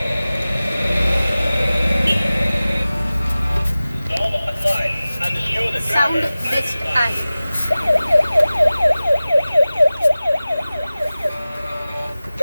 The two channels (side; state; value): both; inverted; correlation -0.97